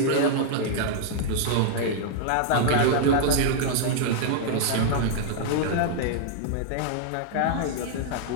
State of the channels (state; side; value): different; both; correlation -0.01